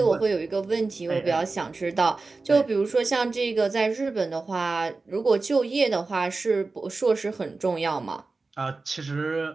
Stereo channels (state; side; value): quieter; left; 3.8 dB